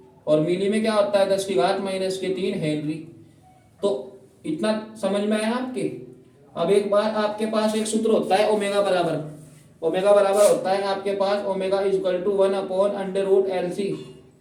और मिली में क्या होता है, 10 की घात -3 हेनरी। तो इतना समझ में आया आपके। अब एक बार आपके पास एक सूत्र होता है ओमेगा बराबर, ओमेगा बराबर होता है आपके पास ओमेगा इक्वल टू 1/√LC,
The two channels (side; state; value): both; identical; correlation 1.00